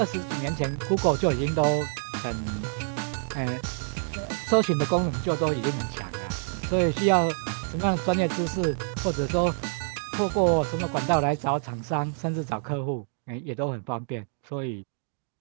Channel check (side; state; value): left; silent; digital silence